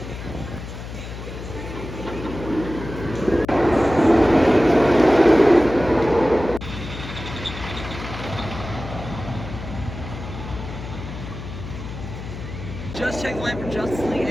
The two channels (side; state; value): left; noise; hum, 10 dB below the sound